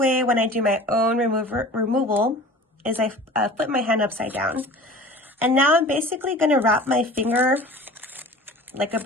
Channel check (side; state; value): both; normal; correlation 0.41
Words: when I do my own removal is I flip my hand upside down. And now I'm basically going to wrap my finger like a